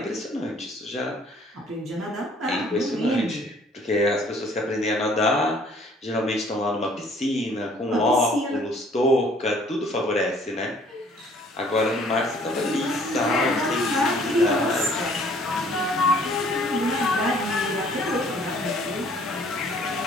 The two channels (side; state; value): both; normal; correlation 0.57